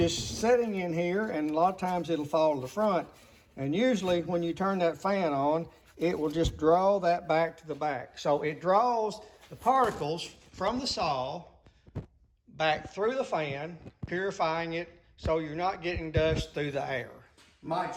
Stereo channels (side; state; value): both; identical; correlation 1.00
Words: sitting in here, and a lot of times it'll fall to the front. And usually when you turn that fan on, it will just draw that back to the back. So it draws the particles from the saw back through the fan, purifying it so you're not getting dust through the air. My